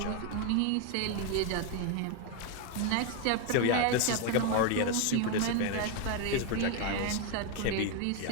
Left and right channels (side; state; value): both; different; correlation 0.01